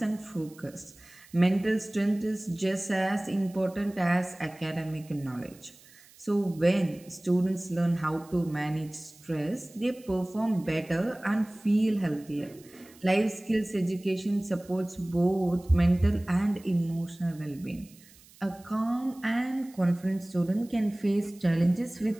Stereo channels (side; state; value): right; noise; hiss, 25 dB below the sound